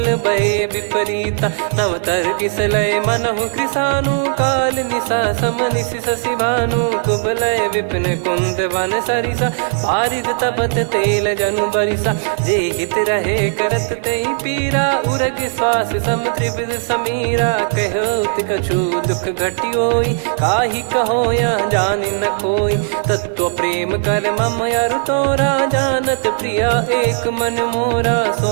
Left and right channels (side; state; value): left; silent; 64 dB below the other